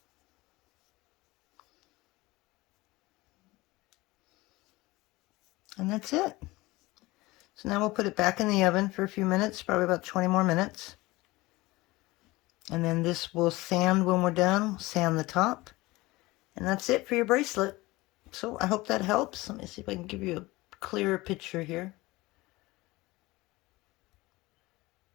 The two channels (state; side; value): quieter; right; 20.8 dB